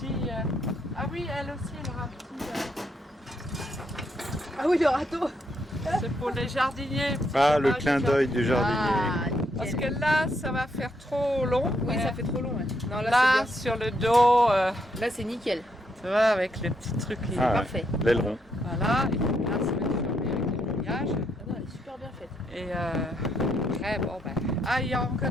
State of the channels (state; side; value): normal; both; correlation 0.77